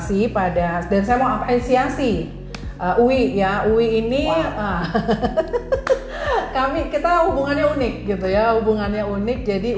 dan saya mau apresiasi UI ya, UI ini kita hubungannya unik gitu ya, jadi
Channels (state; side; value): identical; both; correlation 1.00